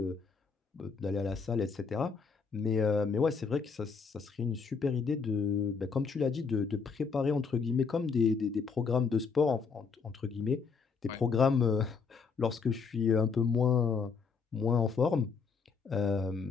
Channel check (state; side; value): quieter; right; 5.4 dB